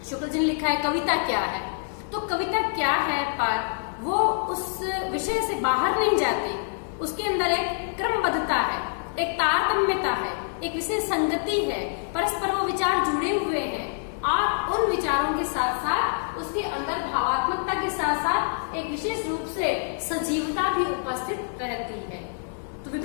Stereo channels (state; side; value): silent; right; 61 dB below the other